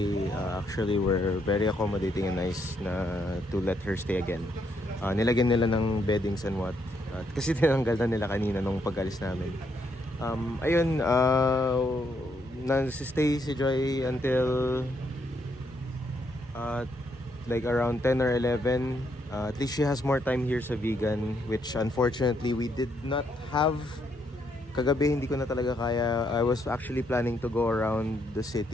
actually were very accommodating and nice na to let her stay again. Nilagyan nila ng beddings and what. Kasi tinanggal na nila kanina nung pag-alis namin. Ayun, nag-stay si Joy until like around 10 or 11. At least she has more time here sa Vegan, which unfortunately we did not have. Kagabi hindi ko na talaga kaya. I was actually planning to go around the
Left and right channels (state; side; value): normal; both; correlation 0.75